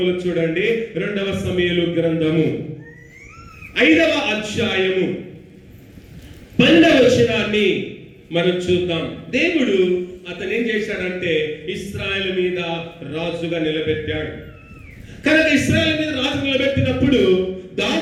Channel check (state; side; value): identical; both; correlation 1.00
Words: చూడండి. 2వ సమూయేలు గ్రంథము 5వ అధ్యాయము 12వ వచనాన్ని మనం చూద్దాం. దేవుడు అతను ఏం చేశాడంటే ఇశ్రాయేలు మీద రాజుగా నిలబెట్టాడు. కనుక ఇశ్రాయేలు మీద రాజు నిలబెట్టినప్పుడు